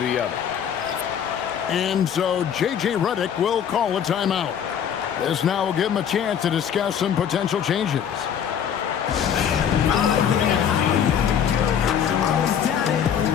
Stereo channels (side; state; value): right; quieter; 8.5 dB